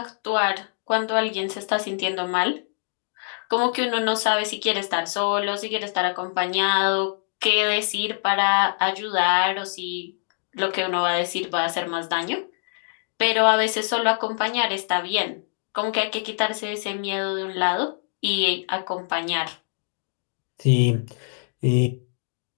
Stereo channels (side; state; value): right; silent; digital silence